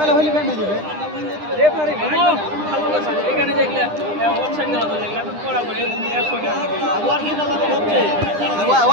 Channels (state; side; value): late; left; 9.9 ms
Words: হলে ব্যান্ড হয়ে যাবে